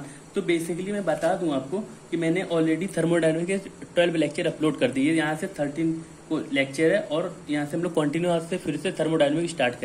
तो बेसिकली मैं बता दूं आपको कि मैंने ऑलरेडी थर्मोडायनामिक्स के 12 लेक्चर अपलोड कर दिए। यहाँ से 13 को लेक्चर है और यहाँ से हम लोग कंटिन्यू आज से फिर से थर्मोडायनामिक्स स्टार्ट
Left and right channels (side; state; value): both; identical; correlation 1.00